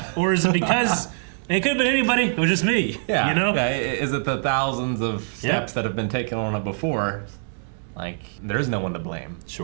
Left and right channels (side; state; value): left; silent; digital silence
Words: or is it because it could have been anybody? It was just me. Yeah. You know? Yeah. Is it the thousands of steps that have been taken on it before? Like, there's no one to blame.